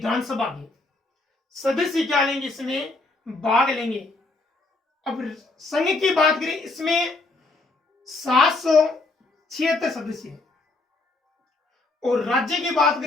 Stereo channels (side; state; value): right; quieter; 3.3 dB